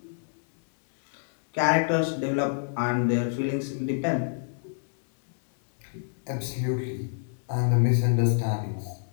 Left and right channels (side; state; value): right; silent; digital silence